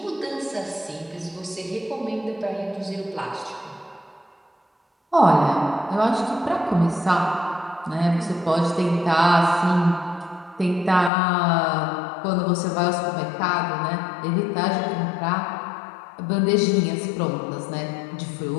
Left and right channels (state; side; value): drops out; right; at 11.1 s